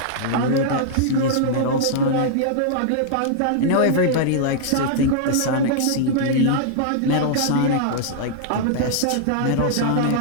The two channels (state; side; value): different; both; correlation -0.01